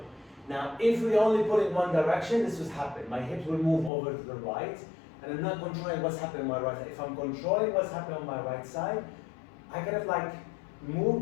Now, if we only pull in one direction, this would happen. My hips will move over to the right, and I'm not controlling what's happening on my right side. If I'm controlling what's happening on my right side, I kind of like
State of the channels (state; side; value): drops out; right; at 3.9 s